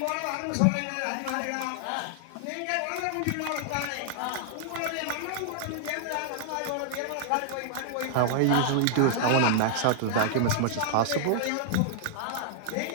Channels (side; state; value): both; different; correlation -0.01